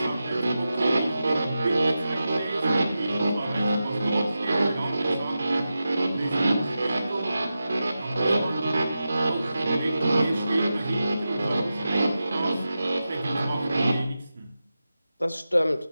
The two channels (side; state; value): both; inverted; correlation -0.92